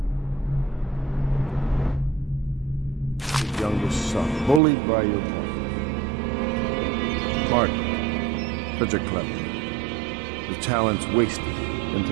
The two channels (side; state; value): left; drops out; at 4.6 s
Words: Youngest son, bullied by your mother. Martin, such a clever man. His talents wasted